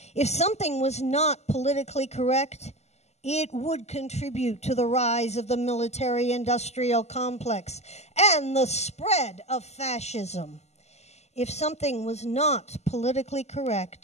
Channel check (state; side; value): late; right; 0.32 ms